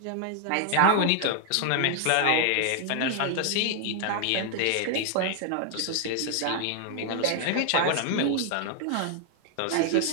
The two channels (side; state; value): both; different; correlation 0.00